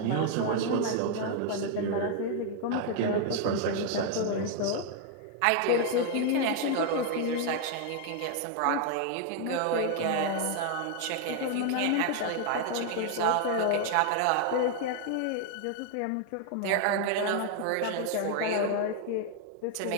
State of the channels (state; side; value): different; both; correlation 0.00